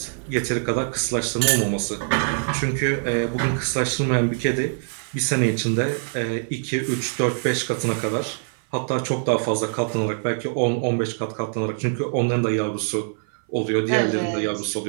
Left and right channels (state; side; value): silent; left; 57 dB below the other